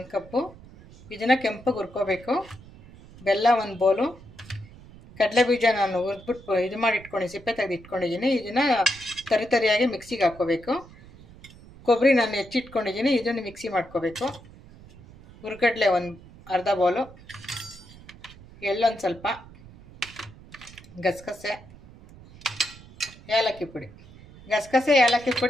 ಕಪ್ಪು, ಇದನ್ನು ಕೆಂಪಗೆ ಹುರ್ಕೋಬೇಕು. ಬೆಲ್ಲ 1 ಬೌಲು, ಕಡಲೆ ಬೀಜ ನಾನು ಹುರಿದ್ಬಿಟ್ಟು ಇದು ಮಾಡಿ ಸಿಪ್ಪೆ ತೆಗೆದು ಇಟ್ಕೊಂಡಿದ್ದೀನಿ. ಇದನ್ನು ತರಿಯಾಗಿ ಮಿಕ್ಸಿಗೆ ಹಾಕ್ಕೋಬೇಕು. ಕೊಬ್ಬರಿ ನಾನು ಹೆಚ್ಚಿಟ್ಕೊಂಡಿದ್ದೀನಿ, ಇದನ್ನು ಮಿಕ್ಸಿ ಮಾಡ್ಕೋಬೇಕು. ಹುರ್ಗಡ್ಲೆ 1/2 ಬೌಲು, ಎಳ್ಳೊಂದು ಸ್ವಲ್ಪ, ಗಸಗಸೆ, ಏಲಕ್ಕಿ ಪುಡಿ. ಗಸಗಸೆ ಏಲಕ್ಕಿ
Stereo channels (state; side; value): noise; right; rumble, 20 dB below the sound